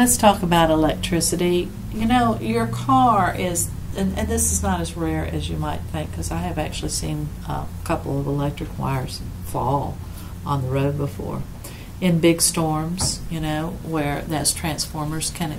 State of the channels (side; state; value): both; identical; correlation 1.00